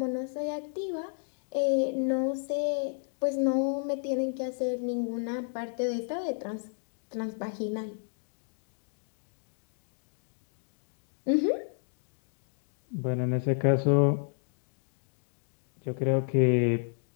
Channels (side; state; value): right; silent; digital silence